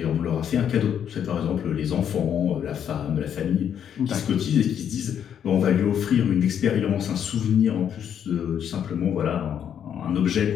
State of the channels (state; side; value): quieter; right; 8.9 dB